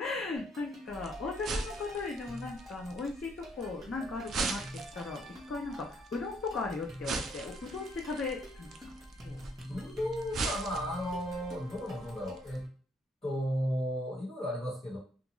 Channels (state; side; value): normal; both; correlation 0.68